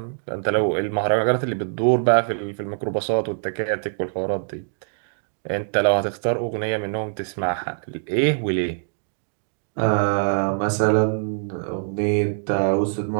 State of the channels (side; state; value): left; silent; digital silence